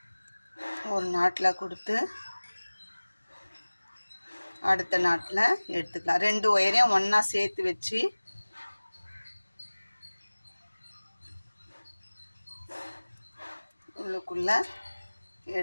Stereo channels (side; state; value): both; inverted; correlation -1.00